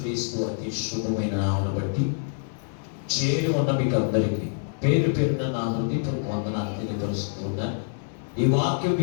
అతి శుభమైన నామమును బట్టి చేరి ఉన్న మీకు అందరికీ పేరు పేరున నా హృదయపూర్వక వందనాలు తెలియపరుస్తూ ఉన్నాను. ఈ వాక్యం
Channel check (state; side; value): silent; right; digital silence